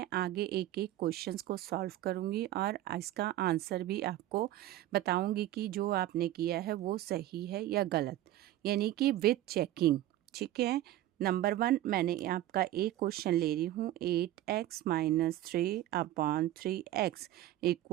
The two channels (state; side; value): quieter; left; 14.1 dB